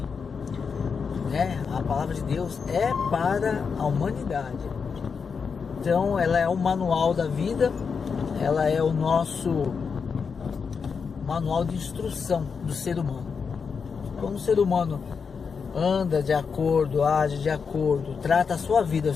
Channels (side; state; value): right; quieter; 5.8 dB